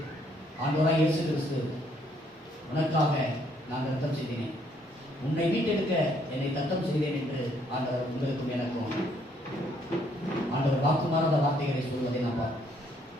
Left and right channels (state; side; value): normal; both; correlation 0.68